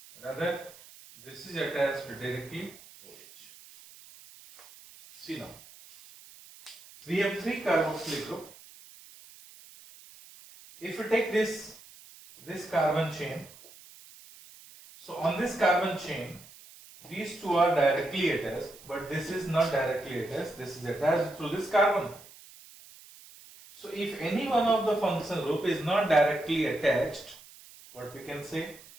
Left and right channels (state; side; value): noise; right; hiss, 21 dB below the sound